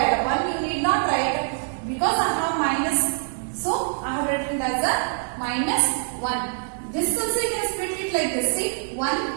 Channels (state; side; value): silent; left; digital silence